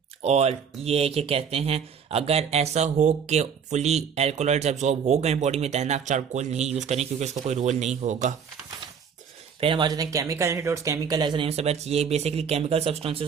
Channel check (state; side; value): quieter; left; 7.0 dB